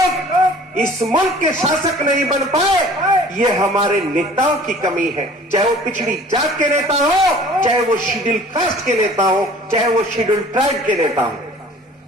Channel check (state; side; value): normal; both; correlation 0.48